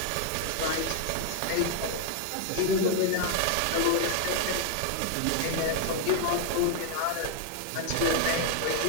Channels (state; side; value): different; both; correlation 0.00